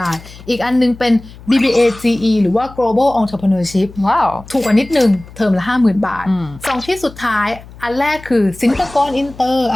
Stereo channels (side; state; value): left; noise; hum, 19 dB below the sound